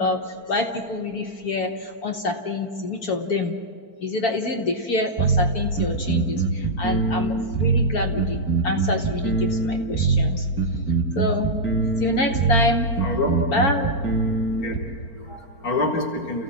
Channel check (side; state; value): right; late; 4.4 ms